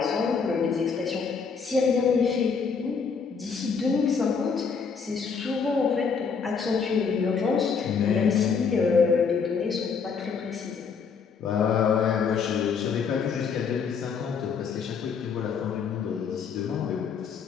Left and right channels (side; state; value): right; quieter; 5.8 dB